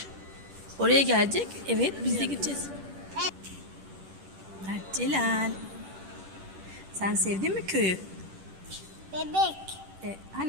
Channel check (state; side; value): late; left; 10 ms